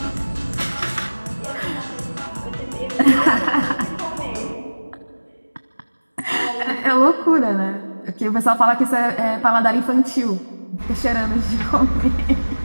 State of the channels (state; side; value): inverted; both; correlation -1.00